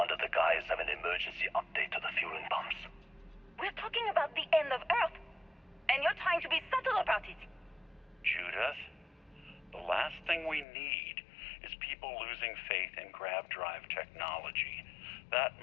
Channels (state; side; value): drops out; right; at 10.7 s